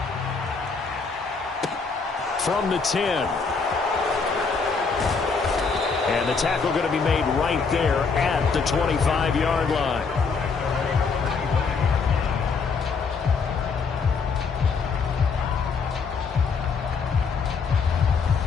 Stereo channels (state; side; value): quieter; right; 5.0 dB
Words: From the 10. And the tackle going to be made right there at the 25-yard line.